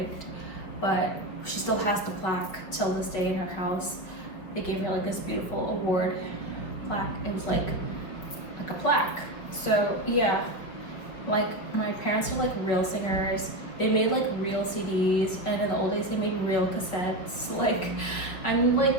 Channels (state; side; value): late; right; 5.4 ms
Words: But she still has the plaque till this day in her house. They gave her like this beautiful award plaque. It was like a plaque. So yeah, like my parents are like real singers. They made like real CDs, and in the old days they made real cassettes. Like I'm